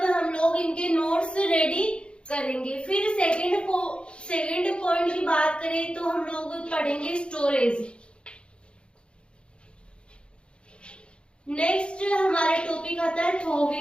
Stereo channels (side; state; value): right; late; 0.056 ms